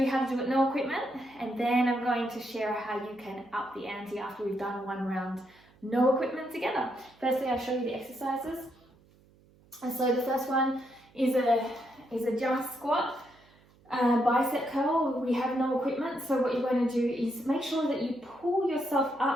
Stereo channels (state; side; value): noise; right; hum, 29 dB below the sound